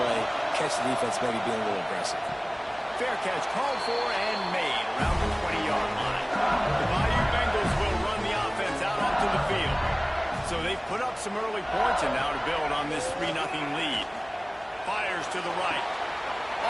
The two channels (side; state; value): both; identical; correlation 1.00